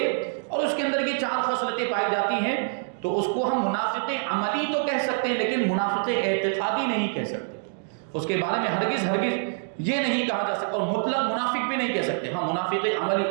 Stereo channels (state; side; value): silent; left; digital silence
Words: اور اس کے اندر یہ 4 خصلتیں پائی جاتی ہیں، تو اس کو ہم منافق عملی تو کہہ سکتے ہیں، لیکن منافق اعتقادی نہیں کہہ سکتے۔ اس کے بارے میں ہرگز یہ نہیں کہا جا سکتا، اور مطلق منافق بھی نہیں کہہ سکتے۔ ہاں، منافق